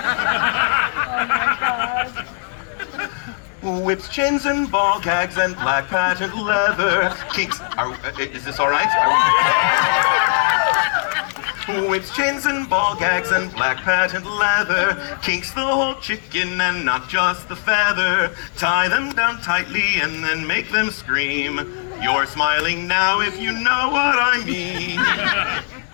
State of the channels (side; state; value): right; silent; digital silence